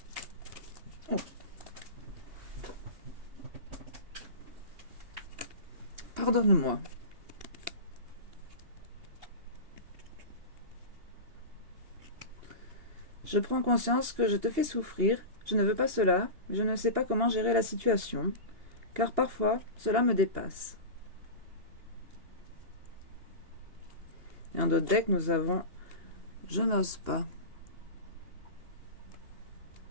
Oh. Pardonne-moi. Je prends conscience que je te fais souffrir. Je ne veux pas cela. Je ne sais pas comment gérer la situation. Car parfois, cela me dépasse. Et en d'autres decks, nous avons « Je n'ose pas ».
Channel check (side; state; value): left; late; 2.8 ms